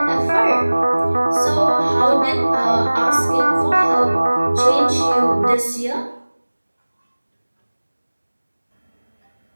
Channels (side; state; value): both; inverted; correlation -1.00